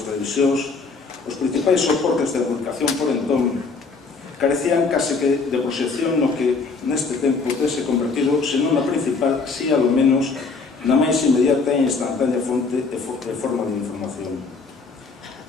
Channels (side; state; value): right; quieter; 4.3 dB